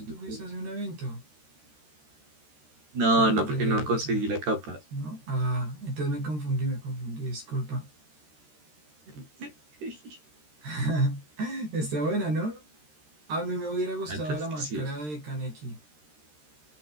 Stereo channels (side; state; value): left; late; 13 ms